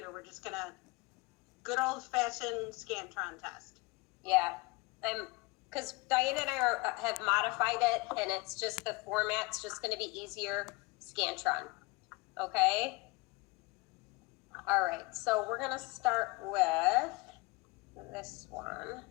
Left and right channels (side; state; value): right; quieter; 25.0 dB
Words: We're just gonna good old-fashioned Scantron test. Yeah, because Diane and I have modified it, and it's just the format's just gonna be easier, Scantron. Okay? All right, so we're gonna start with this one.